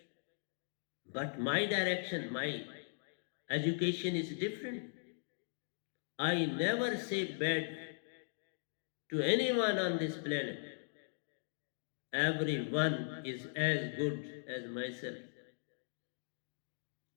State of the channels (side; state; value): right; silent; digital silence